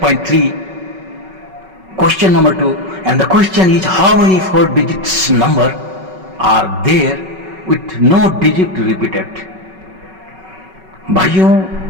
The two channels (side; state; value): left; late; 5.3 ms